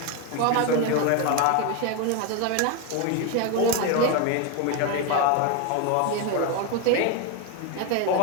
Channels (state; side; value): different; both; correlation 0.02